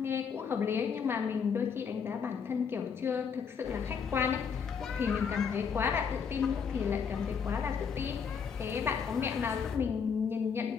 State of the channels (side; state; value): right; quieter; 6.5 dB